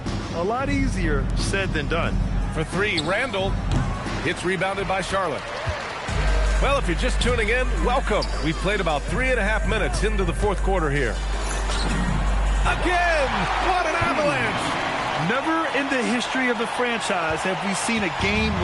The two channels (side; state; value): both; identical; correlation 1.00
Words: a lot easier said than done. For three, Randall. It's rebounded by Charlotte. Well, if you're just tuning in, welcome. We've played about 3.5 minutes into the fourth quarter here. Again! What an avalanche! Never in the history of the franchise have we seen a game